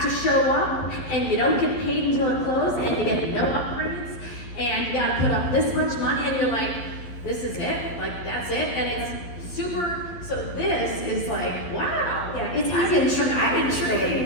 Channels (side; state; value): right; late; 12 ms